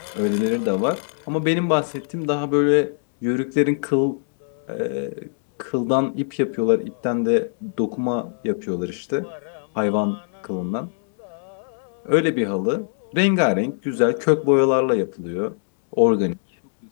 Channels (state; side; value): silent; right; digital silence